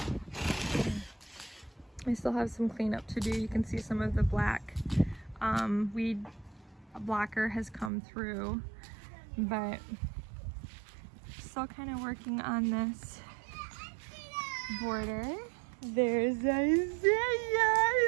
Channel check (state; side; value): drops out; left; at 7.9 s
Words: I still have some cleanup to do. You can see some of the black weed blocker has come through, but still kind of working on this border. There's Isaiah